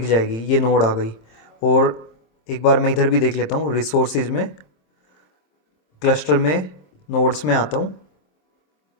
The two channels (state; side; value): late; right; 27 ms